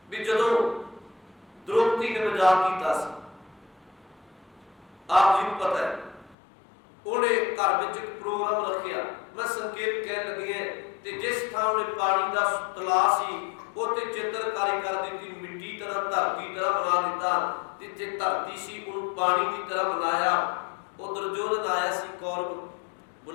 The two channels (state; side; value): drops out; right; at 6.4 s